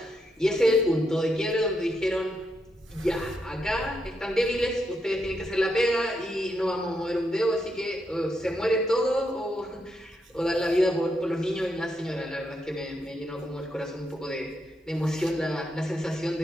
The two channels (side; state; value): both; normal; correlation 0.81